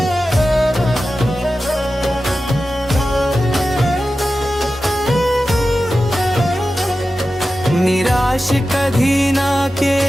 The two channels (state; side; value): normal; both; correlation 0.93